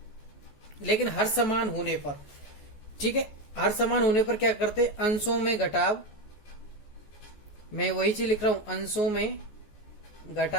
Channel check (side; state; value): right; late; 14 ms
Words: लेकिन हर समान होने पर, ठीक है, हर समान होने पर क्या करते, अंशों में घटाव, मैं वही चीज लिख रहा हूं, अंशों में